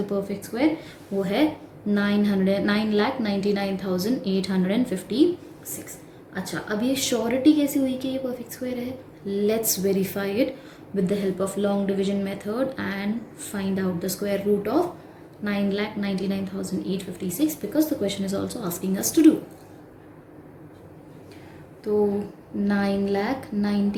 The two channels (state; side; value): identical; both; correlation 1.00